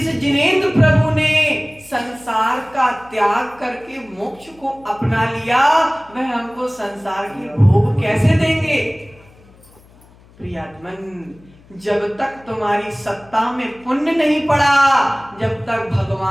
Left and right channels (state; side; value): noise; left; hum, 27 dB below the sound